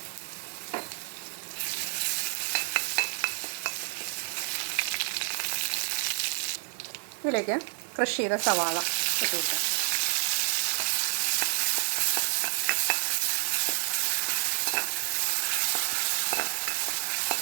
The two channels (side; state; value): left; silent; digital silence